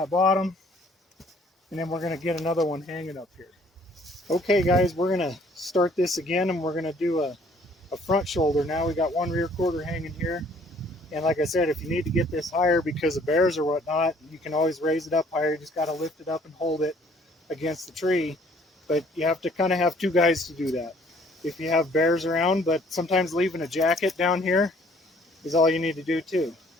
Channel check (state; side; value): normal; both; correlation 0.59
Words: bottom, and then we're going to get another one hanging up here. Okay guys, we're going to start this again, and we're going to do a front shoulder now. We got one rear quarter hanging here. And like I said, if you need to get this higher because of bears or whatnot, you can always raise it up higher. You just got to lift it up and hold it against the tree. But you have to kind of have two guys to do that if you have bears around. But sometimes leaving a jacket down here is all you need to do too.